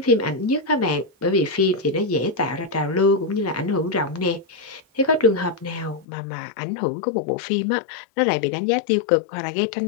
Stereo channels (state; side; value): drops out; right; at 6.1 s